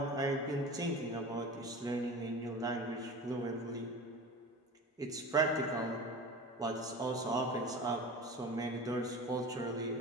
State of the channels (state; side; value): normal; both; correlation 0.34